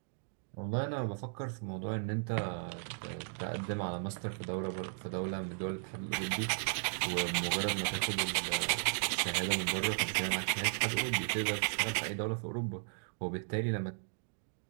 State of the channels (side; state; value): left; silent; digital silence